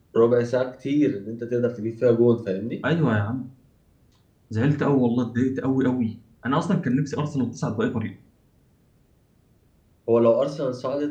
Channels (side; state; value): both; identical; correlation 1.00